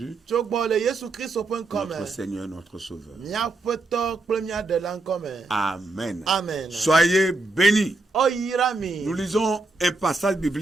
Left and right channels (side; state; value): left; quieter; 3.2 dB